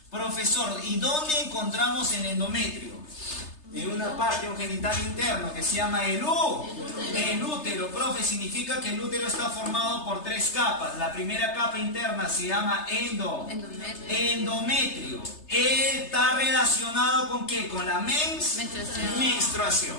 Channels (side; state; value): right; late; 3.3 ms